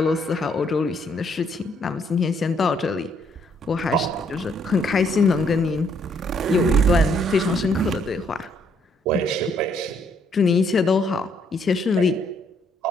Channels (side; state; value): both; normal; correlation 0.69